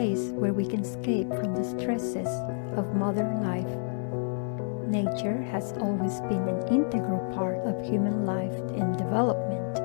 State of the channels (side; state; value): right; silent; digital silence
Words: where we can escape from the stresses of modern life. Nature has always been an integral part of human life and development.